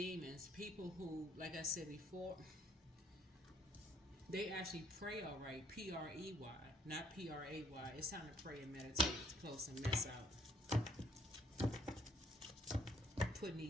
People who, like I said before, they actually pray all right. P-R-E-Y, not P-R-A-Y. It's time to pray and meditate to close some mess out. Putting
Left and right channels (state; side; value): normal; both; correlation 0.63